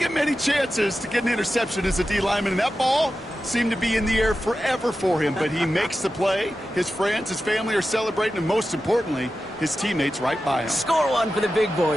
many chances to get an interception as a D lineman, and that ball seemed to be in the air forever for him, but he makes the play. His friends, his family are celebrating, and most importantly, his teammates right by him. Score one for the big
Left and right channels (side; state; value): both; normal; correlation 0.92